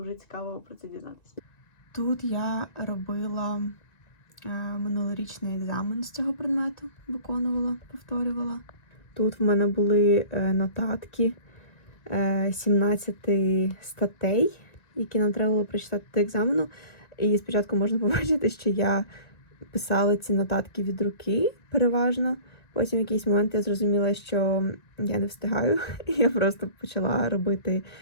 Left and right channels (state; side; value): late; right; 1.9 ms